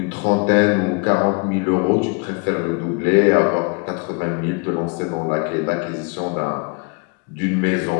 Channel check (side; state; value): right; quieter; 32.3 dB